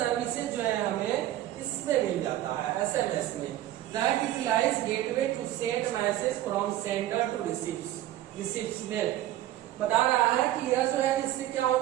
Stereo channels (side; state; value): left; quieter; 13.7 dB